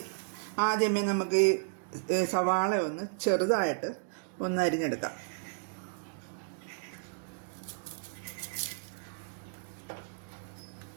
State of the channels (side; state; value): left; silent; digital silence